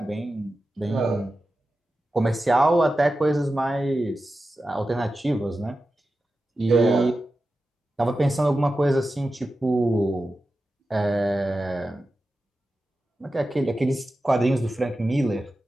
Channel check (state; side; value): normal; both; correlation 0.92